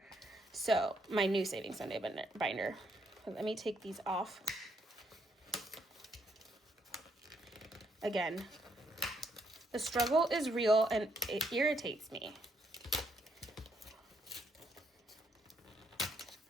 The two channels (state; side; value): normal; both; correlation 0.74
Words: So my new Saving Sunday binder. Let me take these off. Again, the struggle is real and it irritates me.